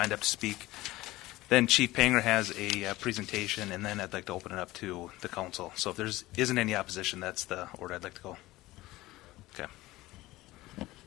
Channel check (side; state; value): right; quieter; 18.2 dB